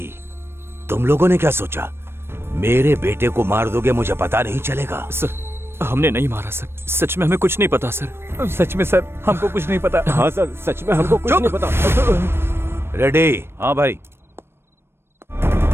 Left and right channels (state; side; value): late; left; 0.12 ms